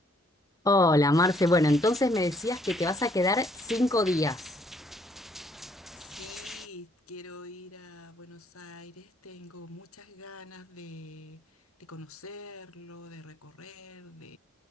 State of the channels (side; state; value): both; normal; correlation 0.67